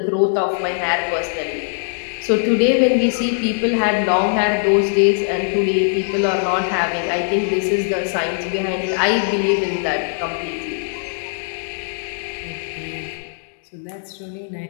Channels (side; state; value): right; silent; digital silence